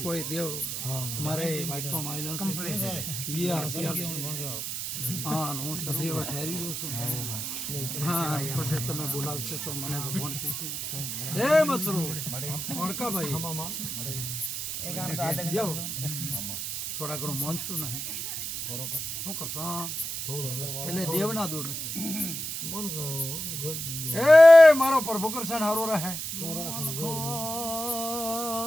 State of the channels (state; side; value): noise; right; hiss, 4 dB below the sound